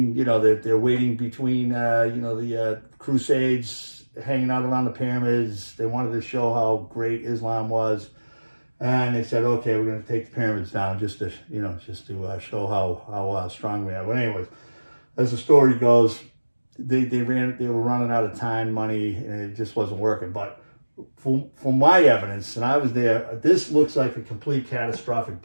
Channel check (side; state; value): both; inverted; correlation -1.00